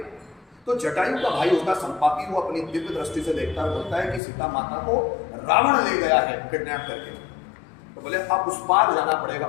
तो जटायु का भाई होता संपाति, वो अपनी दिव्य दृष्टि से देखता है, बोलता है कि सीता माता को रावण ले गया है किडनैप करके। तो बोले अब उस पार जाना पड़ेगा,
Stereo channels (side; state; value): right; drops out; at 4.2 s